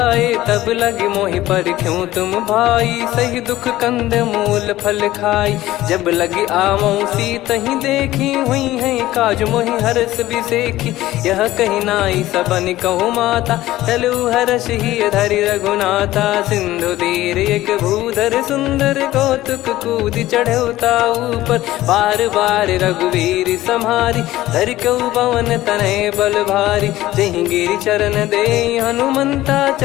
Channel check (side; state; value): right; quieter; 15.7 dB